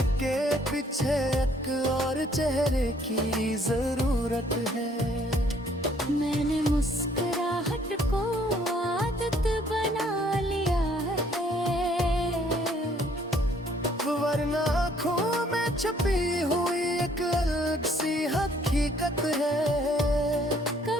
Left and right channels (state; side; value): normal; both; correlation 0.63